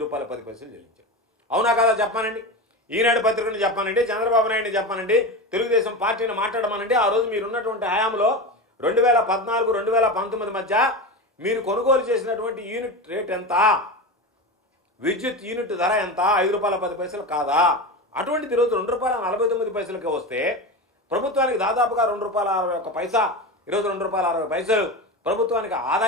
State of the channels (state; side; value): normal; both; correlation 0.23